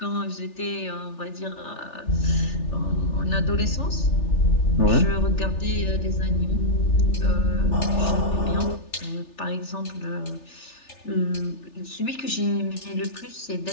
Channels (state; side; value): late; right; 3.4 ms